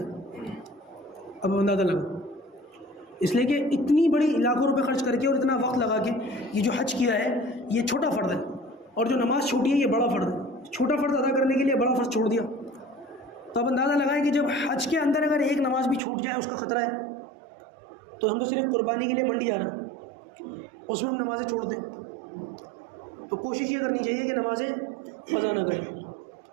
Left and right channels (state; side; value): drops out; left; at 16.0 s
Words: اب اندازہ لگا، اس لیے کہ اتنی بڑی لاکھوں روپے خرچ کر کے اور اتنا وقت لگا کے یہ جو حج کیا ہے یہ چھوٹا فرض ہے، اور جو نماز چھوٹی ہے یہ بڑا فرض ہے، چھوٹا فرض ادا کرنے کے لیے بڑا فرض چھوڑ دیا۔ تو اب اندازہ لگائے کہ جب حج کے اندر اگر ایک نماز بھی چھوٹ جائے اس کا خطرہ ہے، تو ہم تو صرف قربانی کے لیے منڈی جا رہے ہیں، اس میں ہم نمازیں چھوڑ دیں۔ تو کوشش یہ کرنی چاہیے کہ نمازیں قضا نہ کریں۔